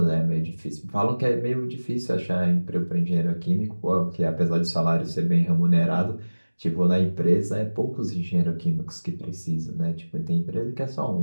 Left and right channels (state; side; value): inverted; both; correlation -1.00